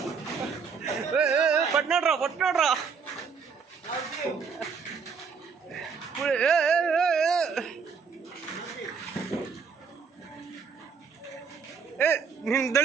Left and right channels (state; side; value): quieter; left; 5.9 dB